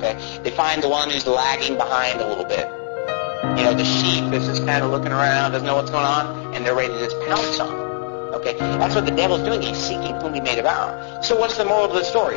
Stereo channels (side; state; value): right; silent; 60 dB below the other